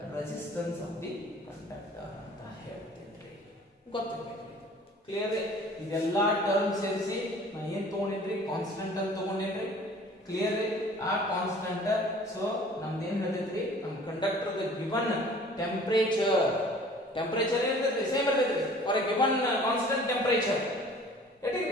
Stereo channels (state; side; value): normal; both; correlation 0.49